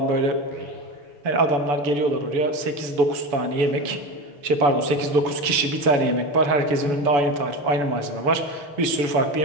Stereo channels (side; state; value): left; late; 7.0 ms